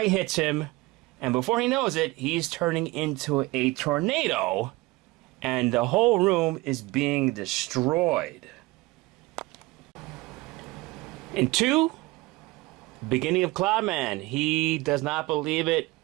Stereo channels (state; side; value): quieter; left; 21.3 dB